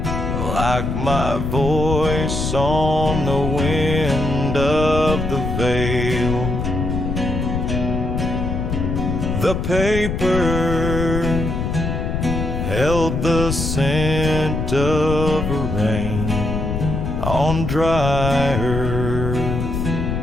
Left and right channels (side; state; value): left; noise; rumble, 2 dB below the sound